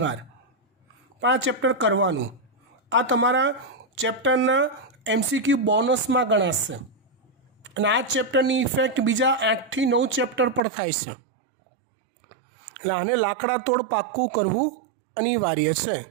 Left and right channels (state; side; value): drops out; left; at 10.6 s